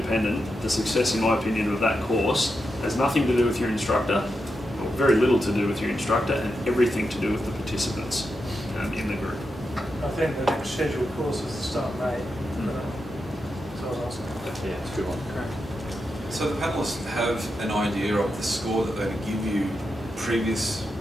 The success, in my opinion, of that course has nothing to do with your instructor, or very little to do with your instructor, and everything to do with the participants in the group. I think the next scheduled course is the start of May. So I was asking. Yeah, it's a good one. Correct. So the panelists have an idea of the score that they would give you previous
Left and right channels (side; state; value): both; normal; correlation 0.87